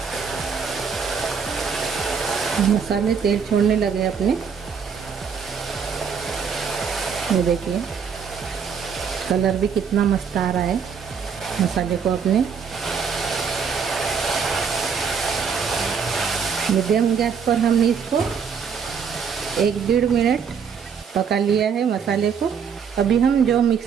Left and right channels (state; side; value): quieter; left; 6.6 dB